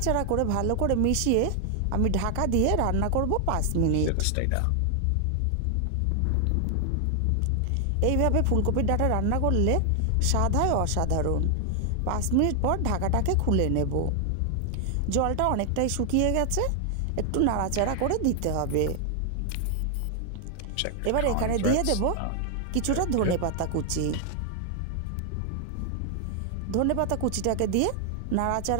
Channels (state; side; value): different; both; correlation 0.00